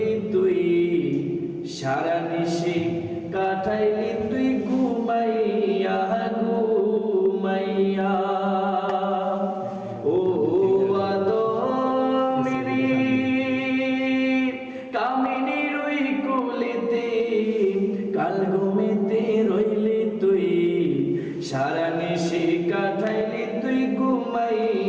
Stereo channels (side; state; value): both; identical; correlation 1.00